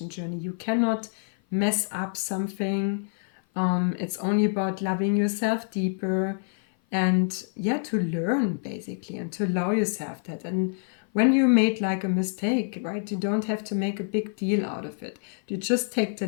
journey. You cannot mess up something. It's only about loving yourself deeper and, yeah, to learn basically and to allow yourself that. And when you made like a mistake, right, you don't have to make a big deal out of it. You just take the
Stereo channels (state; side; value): silent; right; 56 dB below the other